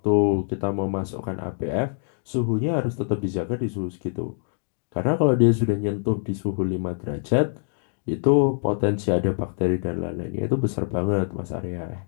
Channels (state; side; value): silent; right; 62 dB below the other